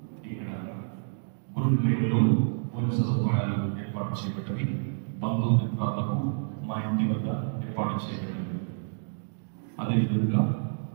ఇక్కడ గురువులలో కొన్ని సదుపాయాలు ఏర్పాటు చేయబడి బంధుమిత్రాలకు మా ఇంటి వద్ద ఏర్పాటు చేయబడి అదేవిధంగా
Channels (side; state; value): left; silent; digital silence